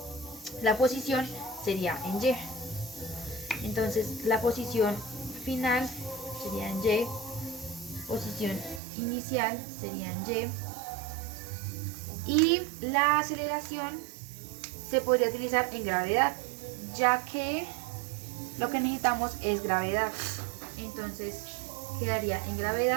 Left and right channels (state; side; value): drops out; left; at 8.8 s